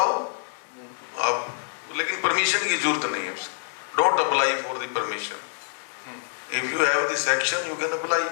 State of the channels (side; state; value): right; silent; 56 dB below the other